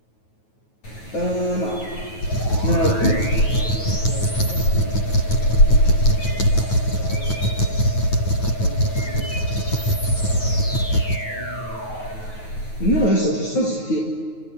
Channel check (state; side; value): late; right; 9.3 ms